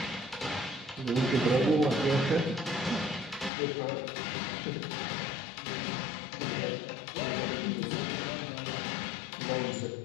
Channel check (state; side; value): drops out; right; at 3.5 s